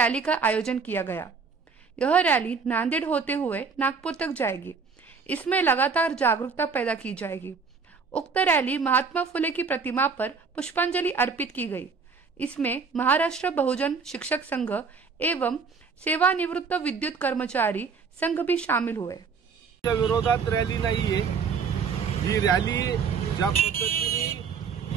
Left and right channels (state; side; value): quieter; left; 5.4 dB